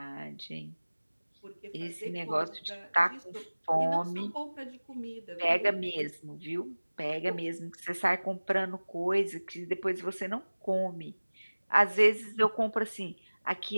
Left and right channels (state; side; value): inverted; both; correlation -1.00